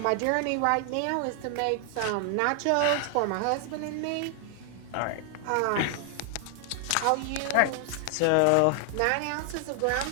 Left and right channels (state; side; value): different; both; correlation 0.00